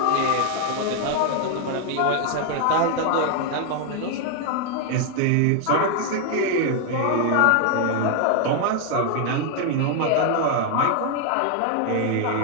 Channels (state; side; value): different; both; correlation 0.00